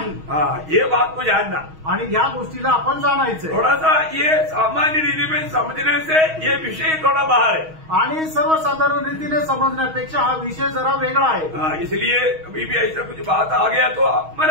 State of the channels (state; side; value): late; left; 6.3 ms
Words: हाँ, ये बात को जानना आणि या गोष्टीला आपण जाणायचं। थोड़ा सा ये सामान्य रीति में समझने से ये विषय थोड़ा बाहर है, आणि सर्वसाधारण रीतीने समजण्यापेक्षा हा विषय जरा वेगळा आहे। इसलिए कभी भी ऐसा कुछ बात आ गया तो